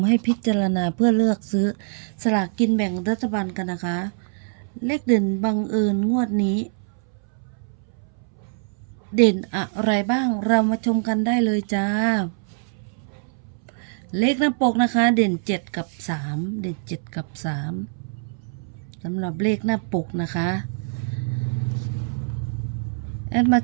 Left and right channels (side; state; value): left; silent; 63 dB below the other